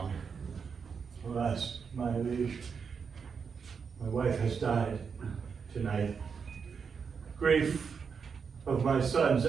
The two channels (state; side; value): quieter; left; 6.0 dB